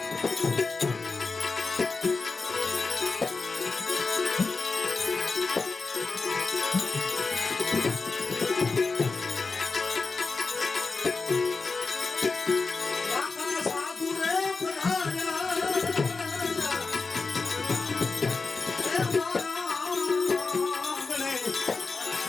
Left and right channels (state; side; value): quieter; right; 4.2 dB